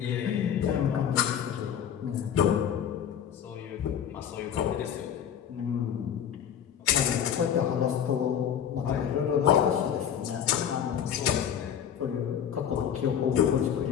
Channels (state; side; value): quieter; right; 9.0 dB